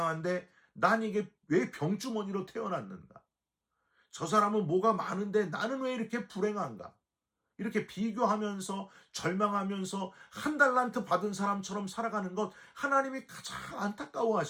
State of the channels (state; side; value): identical; both; correlation 1.00